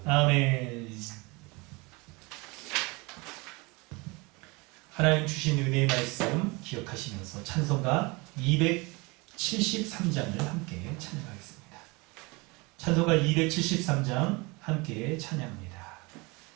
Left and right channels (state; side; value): quieter; left; 26.3 dB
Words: 아멘. 하나님 주신 은혜의 말씀 기억하시면서 찬송가 273장을 함께 찬양하겠습니다. 찬송가 273장 함께 찬양합니다.